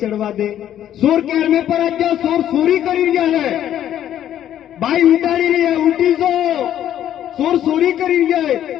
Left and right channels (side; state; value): right; quieter; 11.1 dB